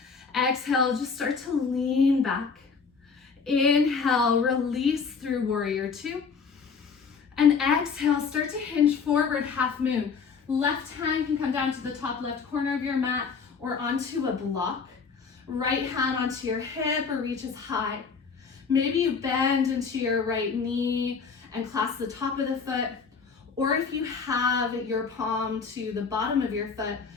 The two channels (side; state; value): right; quieter; 5.5 dB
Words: Exhale, just start to lean back. Inhale, release through warrior two. And exhale, start to hinge forward, half moon. Left hand can come down to the top left corner of your mat or onto a block. Right hand onto your hip or reaches high. Maybe you bend into your right knee and clasp the top of the foot. Or if you have your palm to the bottom of your foot,